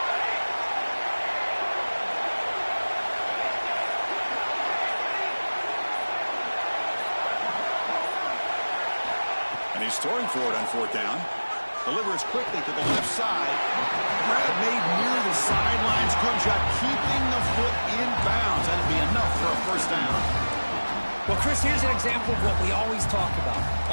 And he's throwing for it on fourth down. Delivers quickly to the left side. Grab made near the sidelines. Good job keeping the foot in bounds. That'll be enough for a first down. Well, Chris, here's an example of what we always talk about.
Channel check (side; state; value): both; inverted; correlation -1.00